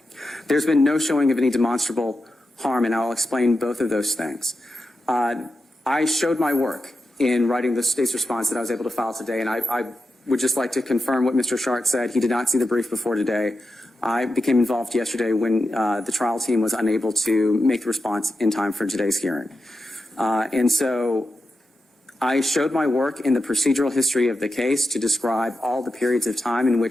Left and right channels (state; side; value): normal; both; correlation 0.90